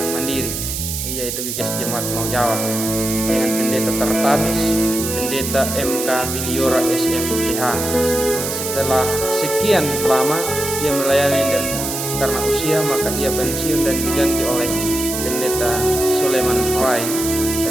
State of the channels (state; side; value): noise; right; hiss, 4 dB below the sound